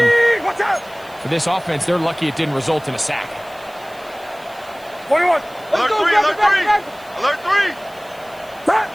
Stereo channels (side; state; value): right; noise; hiss, 25 dB below the sound